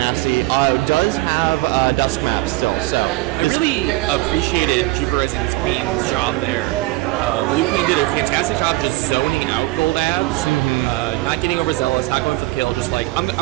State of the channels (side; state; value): left; quieter; 19.7 dB